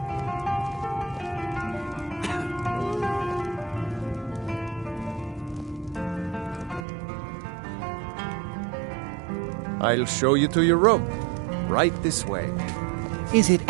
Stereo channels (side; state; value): left; drops out; at 6.9 s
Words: I'll show you to your room. Right this way. Is it